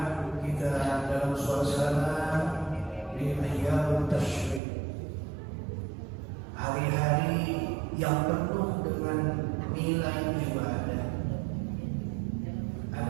kita dalam suasana di ayyamut tasyrik, hari-hari yang penuh dengan nilai ibadah.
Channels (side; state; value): left; drops out; at 4.6 s